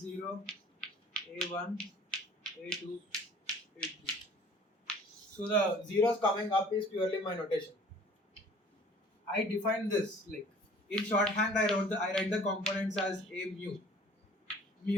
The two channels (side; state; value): both; normal; correlation 0.51